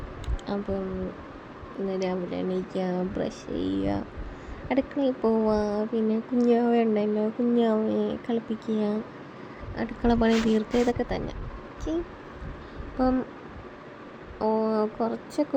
അപ്പം ഇന്ന് രാവിലെ എണീക്കുക, ബ്രഷ് ചെയ്യുക, അടുക്കളയിൽ പോവുക, പിന്നെ കുഞ്ഞാവ ഉണ്ടല്ലോ, കുഞ്ഞാവയെ കളിപ്പിക്കുക, അടുക്കള പണി തീർക്കുക, ഇതൊക്കെ തന്നെ. ഓക്കെ, അപ്പം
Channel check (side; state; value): both; identical; correlation 1.00